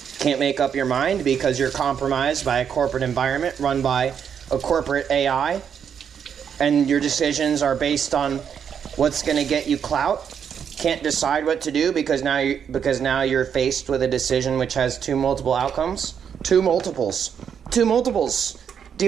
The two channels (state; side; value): quieter; left; 7.7 dB